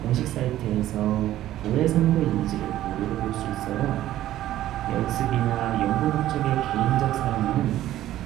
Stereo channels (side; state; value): left; quieter; 13.6 dB